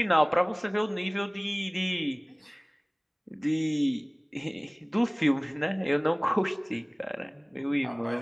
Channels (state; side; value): identical; both; correlation 1.00